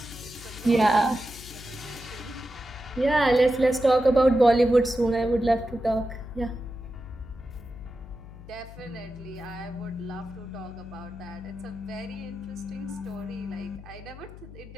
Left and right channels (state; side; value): noise; left; hum, 15 dB below the sound